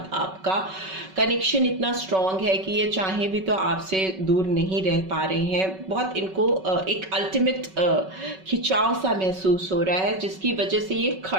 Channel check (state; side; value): late; left; 5.3 ms